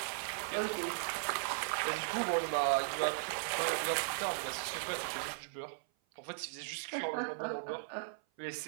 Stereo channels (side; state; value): left; silent; 53 dB below the other